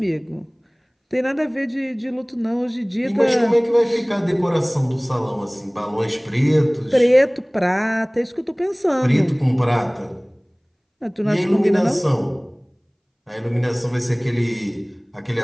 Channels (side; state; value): both; identical; correlation 1.00